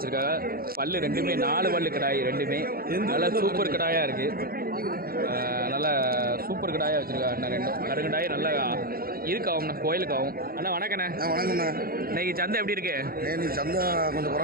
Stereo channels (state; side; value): late; left; 0.43 ms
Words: பல்லு ரெண்டுமே 4 பல்லு கடாய், ரெண்டுமே நல்லா சூப்பர் கடாயாக இருக்குது. நல்லா சூப்பர் கடாயாக வச்சுருக்காங்க அண்ணன். ரெண்டும் கருங்கடாய் நல்லா இருக்காகும்ண்ணா, கோயிலுக்கு ஆகும். அண்ணா வணக்கண்ணே. வணக்கண்ணா. இன்னைக்கு சந்தை எப்படி இருக்கு? நீ சந்தை கொஞ்சம்